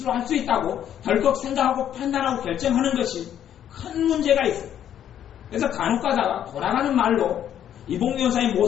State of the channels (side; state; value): right; quieter; 10.2 dB